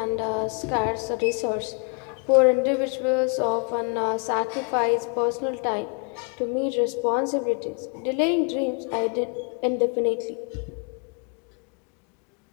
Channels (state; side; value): quieter; right; 37.4 dB